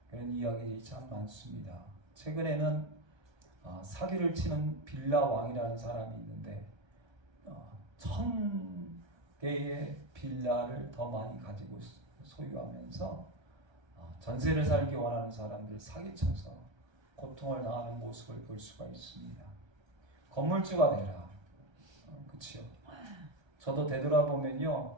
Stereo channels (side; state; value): left; late; 1.3 ms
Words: 그런 이야기들이 참 많습니다. 최근에는 사기를 치는 빌라 왕이라는 사람이 있는데 1000개의 빌라를 더 많이 가지고 소유하면서 전세를 살기 원하는 사람들 사기쳐서 고통을 당하는 모습을 볼 수가 있습니다. 건물주가 되라. 그치요? 저도 되돌아보면요,